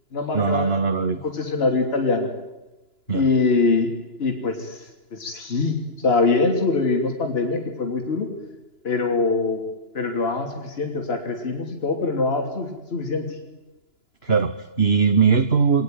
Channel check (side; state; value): right; late; 2.9 ms